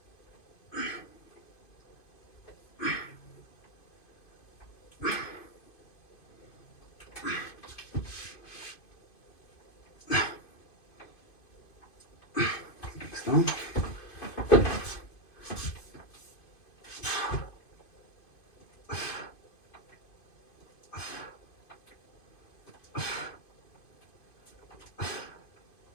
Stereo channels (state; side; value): late; right; 2.5 ms